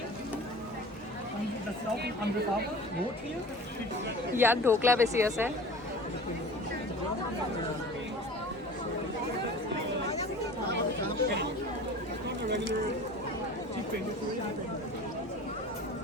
ইয়াত ঢোকলা বেছি আছে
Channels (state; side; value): normal; both; correlation 0.40